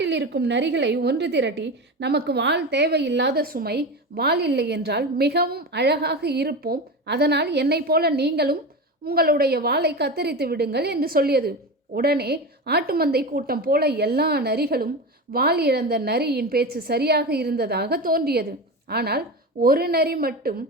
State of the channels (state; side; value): normal; both; correlation 0.24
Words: இருக்கும் நரிகளை ஒன்று திரட்டி, நமக்கு வாள் தேவையில்லாத சுமை, வாள் இல்லை என்றால் மிகவும் அழகாக இருப்போம், அதனால் என்னை போல நீங்களும் உங்களுடைய வாளை கத்தரித்து விடுங்கள் என்று சொல்லியது. உடனே ஆட்டுமந்தை கூட்டம் போல எல்லா நரிகளும் வாள் இழந்த நரியின் பேச்சு சரியாக இருந்ததாக தோன்றியது. ஆனால் ஒரு நரி மட்டும்,